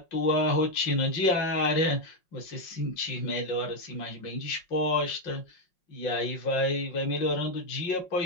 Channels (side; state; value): right; late; 5.5 ms